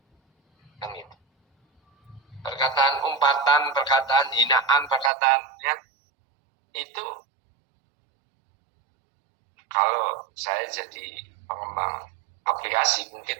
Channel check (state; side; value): drops out; left; at 5.1 s